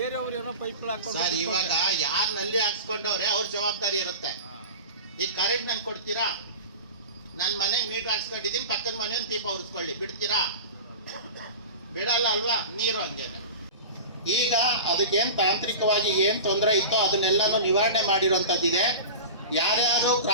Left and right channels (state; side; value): inverted; both; correlation -0.31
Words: ಏನೋ ಪೈಪ್ ಹಾಕೊಂಡು ಸರ್, ಇವಾಗ ಯಾರು ನಲ್ಲಿ ಹಾಕ್ಸ್ಕೊಂಡವ್ರೆ ಅವ್ರ ಜವಾಬ್ದಾರಿ ಇರುತ್ತೆ. ಈಗ ಕರೆಂಟ್ ನನ್ ಕೊಡ್ತೀರಾ? ನನ್ನ ಮನೆ ಮೀಟರ್ ಹಾಕ್ಸ್ಕೊಂಡಿದ್ದೀನಿ, ಪಕ್ಕದ ಮನೆ ಒಂದು ದೀಪ ಉರಿಸ್ಕೊಳ್ಳಿ, ಬಿಡ್ತೀರಾ? ಬಿಡಲ್ಲ ಅಲ್ವಾ? ನೀರು ಹಂಗೇನೆ. ಈಗ ಅದಕ್ಕೇನು ತಾಂತ್ರಿಕವಾಗಿ ಏನು ತೊಂದರೆ ಇತ್ತೋ ಅದನ್ನೆಲ್ಲನೂ ನಿವಾರಣೆ ಮಾಡಿರುವಂಥದ್ದಿದೆ. ಯಾರ್ಯಾರು